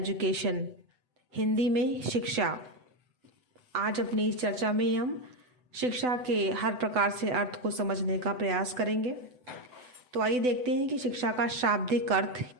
हिंदी में शिक्षा। आज अपनी इस चर्चा में हम शिक्षा के हर प्रकार से अर्थ को समझने का प्रयास करेंगे। तो आइए देखते हैं कि शिक्षा का शाब्दिक अर्थ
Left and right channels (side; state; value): left; late; 8.0 ms